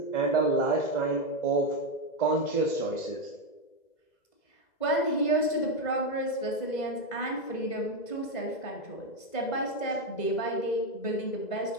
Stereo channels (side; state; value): right; late; 2.0 ms